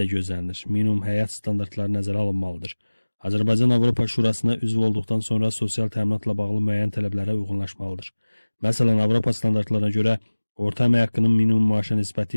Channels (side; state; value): both; inverted; correlation -1.00